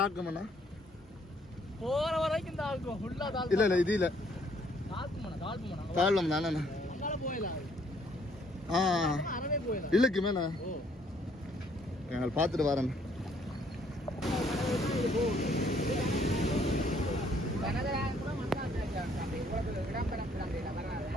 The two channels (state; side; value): normal; both; correlation 0.65